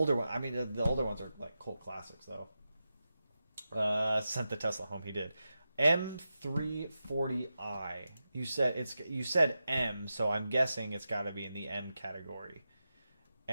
one, the older ones are like cult classics though. Sent the Tesla home. He did. M340i. You said M, so I'm guessing it's got to be in the M category.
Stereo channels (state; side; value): inverted; both; correlation -0.91